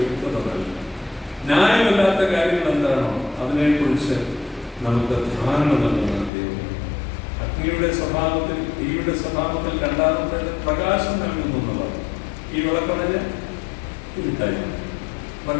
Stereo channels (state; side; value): drops out; right; at 6.3 s